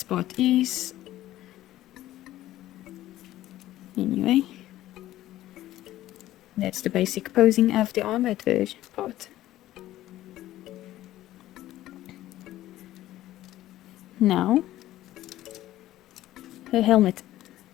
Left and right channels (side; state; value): right; quieter; 14.5 dB